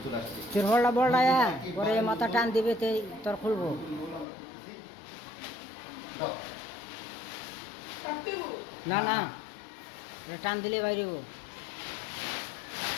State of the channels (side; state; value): right; drops out; at 4.2 s